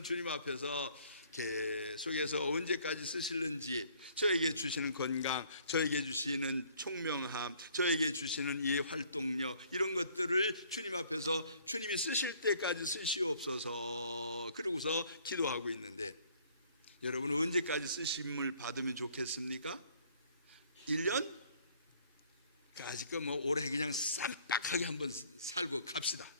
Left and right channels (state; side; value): inverted; both; correlation -0.59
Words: 주님 앞에서 계속해서 언제까지 쓰실는지, 저에게 주시는 건강, 저에게 주시는 총명함, 저에게 주시는 이 활동력, 이런 것들을 주님 앞에서 주님이 쓰실 때까지 쓰시옵소서 그러고서 기도하고 있는데, 여러분 언제까지 쓰심을 받으면 좋겠습니까? 1년? 아직 뭐 올해 그냥 쌈박하게 한번 살고 갑시다.